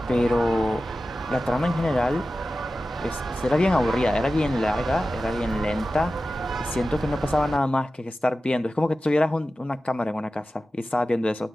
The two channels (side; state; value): both; normal; correlation 0.94